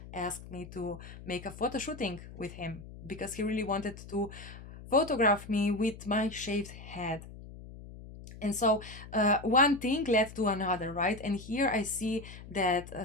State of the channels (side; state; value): left; noise; hum, 15 dB below the sound